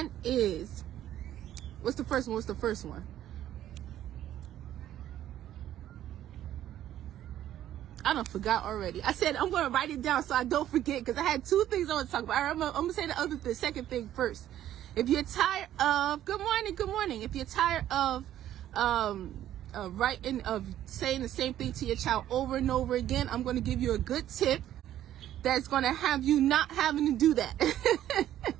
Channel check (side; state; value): left; quieter; 12.1 dB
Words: is, what's the first one? I done forgot already. I said I'm going to write it down so I don't forget, because I had two things I want to talk about. I'm going to say the second thing first. If you're tired of, good morning. If you're tired of saying the same thing to your child over and over again, I'm going to give you a good tip that's going to have you not having to do that.